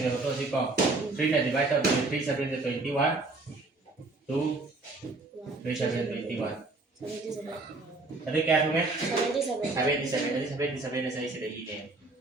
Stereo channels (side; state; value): left; quieter; 3.3 dB